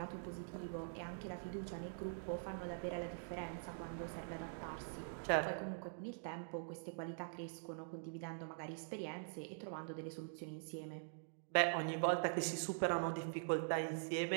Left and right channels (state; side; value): silent; left; digital silence